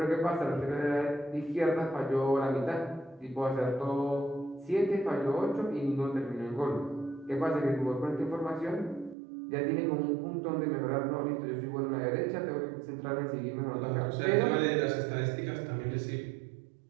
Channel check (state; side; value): drops out; left; at 9.2 s